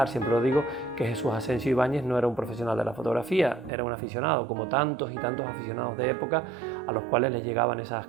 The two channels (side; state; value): left; drops out; at 3.7 s